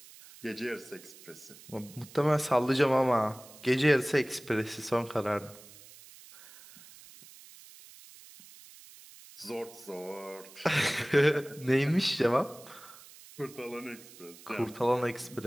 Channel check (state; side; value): noise; right; hiss, 20 dB below the sound